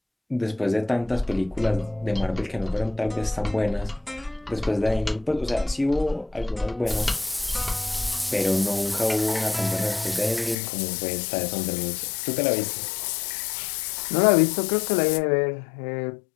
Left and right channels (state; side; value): drops out; right; at 10.6 s